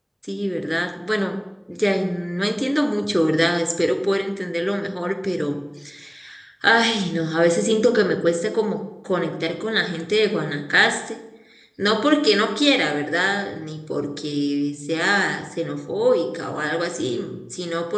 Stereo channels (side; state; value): both; identical; correlation 1.00